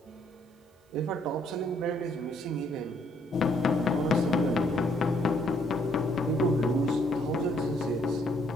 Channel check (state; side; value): normal; both; correlation 0.68